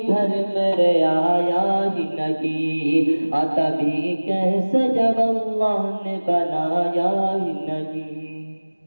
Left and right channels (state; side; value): inverted; both; correlation -1.00